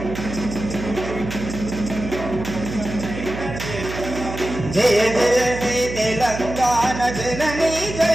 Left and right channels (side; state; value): right; noise; hum, 8 dB below the sound